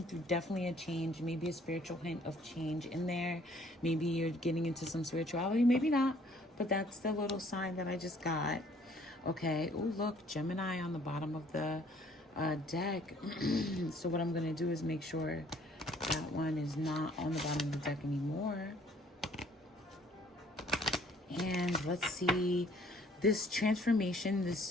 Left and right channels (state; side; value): normal; both; correlation 0.59